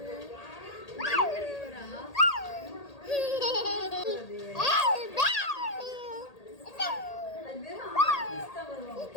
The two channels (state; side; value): late; right; 1.8 ms